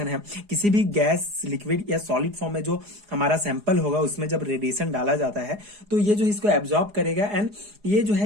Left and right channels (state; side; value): late; left; 4.8 ms